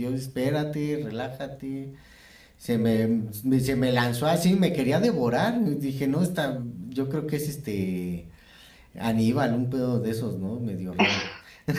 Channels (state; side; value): identical; both; correlation 1.00